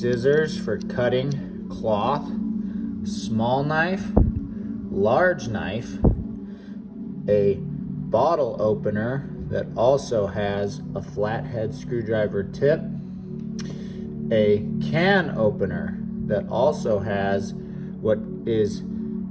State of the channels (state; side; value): identical; both; correlation 1.00